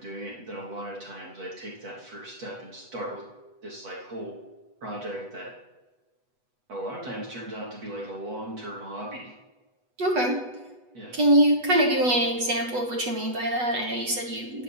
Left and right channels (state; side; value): late; left; 8.1 ms